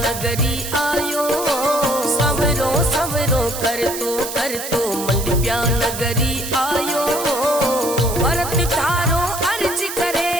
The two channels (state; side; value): noise; right; hiss, 8 dB below the sound